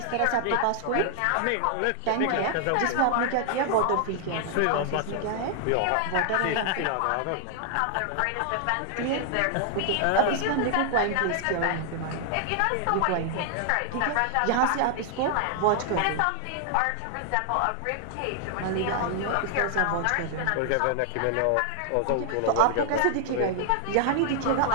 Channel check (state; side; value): different; both; correlation 0.00